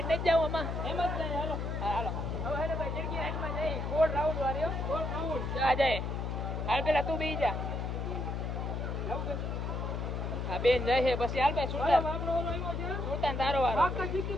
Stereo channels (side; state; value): left; noise; hum, 2 dB below the sound